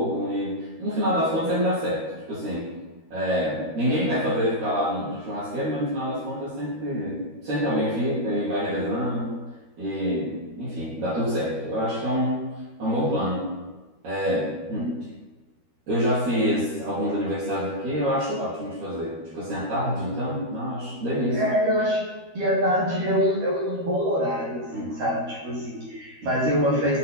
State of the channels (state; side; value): late; left; 13 ms